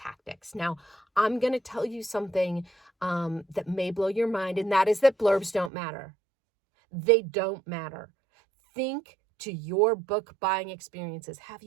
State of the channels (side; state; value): left; drops out; at 5.7 s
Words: Now, I'm going to tell you something that may blow your mind, and that is that blurbs don't matter. They don't matter. Think to your book buying experiences. Have